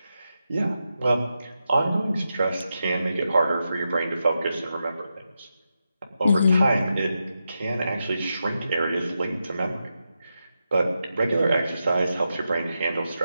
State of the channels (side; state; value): both; inverted; correlation -0.88